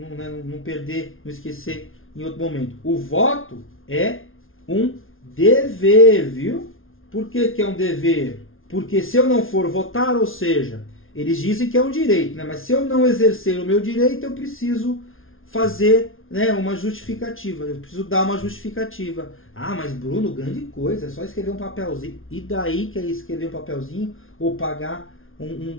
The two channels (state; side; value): late; right; 0.60 ms